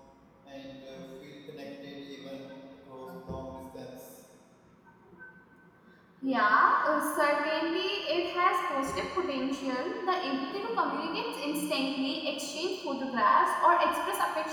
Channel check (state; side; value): identical; both; correlation 1.00